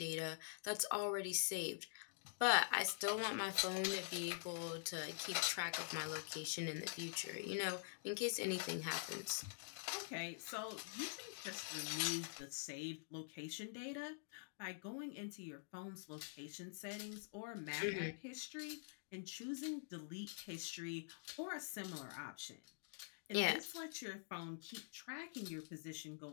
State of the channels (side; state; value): right; silent; digital silence